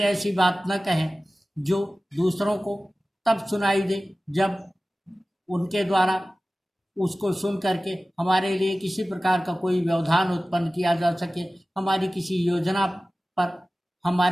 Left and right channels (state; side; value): normal; both; correlation 0.96